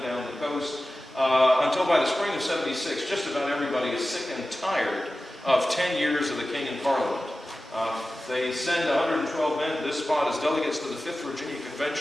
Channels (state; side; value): normal; both; correlation 0.95